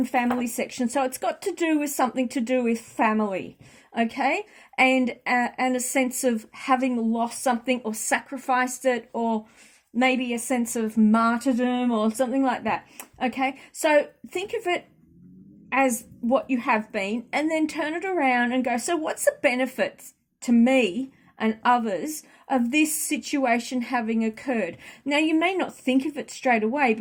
family section, so it's got to do with something to do with family, okay? And a sense of having lost something or sacrificed it, or maybe a sense of martyrdom or something like that, okay? So think of it as what you have been, and then turn it around and go, so what's the benefits to me and others of this situation having occurred? Now, you may not think of it straight away,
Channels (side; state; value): both; identical; correlation 1.00